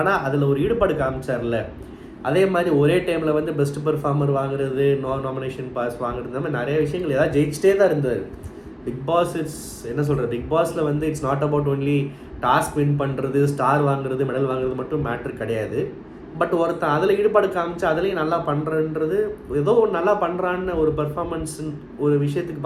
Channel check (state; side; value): identical; both; correlation 1.00